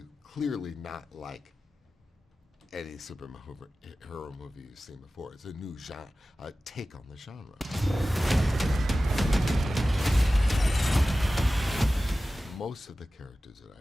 Clearly not like any superhero movie you've seen before. It's a new genre, a take on the genre. Most of the characters that I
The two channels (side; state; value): both; normal; correlation 0.95